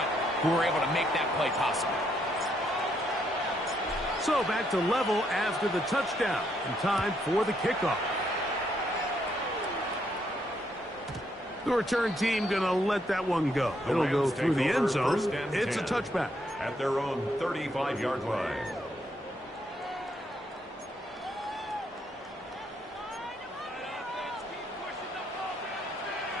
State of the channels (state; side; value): normal; both; correlation 0.74